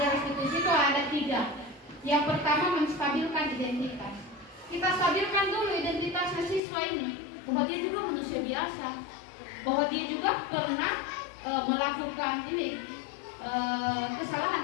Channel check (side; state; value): right; drops out; at 6.6 s